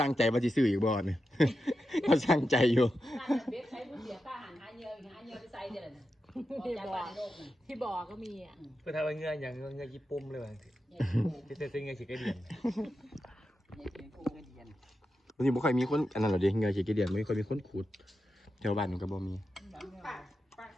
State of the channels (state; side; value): normal; both; correlation 0.89